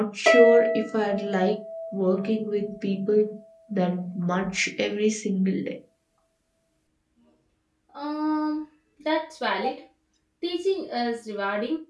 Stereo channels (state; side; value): identical; both; correlation 1.00